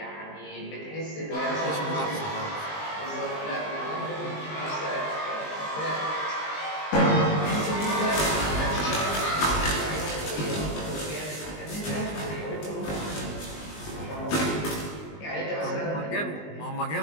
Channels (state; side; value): late; right; 20 ms